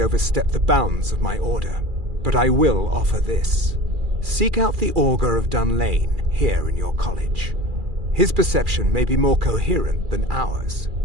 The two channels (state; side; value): late; left; 2.4 ms